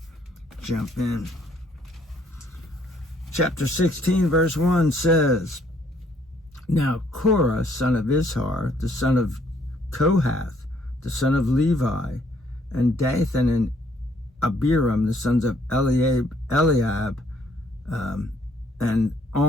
jump in. Chapter 16, verse 1 says, Now Korah, son of Izhar, the son of Kohath, the son of Levi, and Dathan and Abiram, the sons of Eliab, and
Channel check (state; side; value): normal; both; correlation 0.66